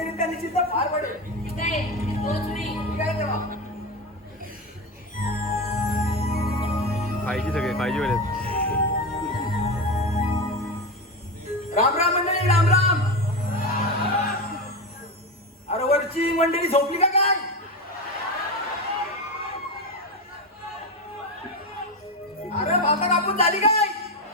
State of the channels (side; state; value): both; normal; correlation 0.18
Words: निश्चित पार पडेल. ठीक आहे, तोच मी. ठीक आहे देवा. पाहिजे सगळे पाहिजे वेळेत. राम राम मंडळी, राम राम. अरे वरची मंडळी झोपली का काय? अरे भाता कापून झाली काय?